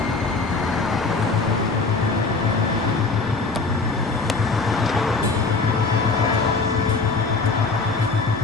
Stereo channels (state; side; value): quieter; right; 4.0 dB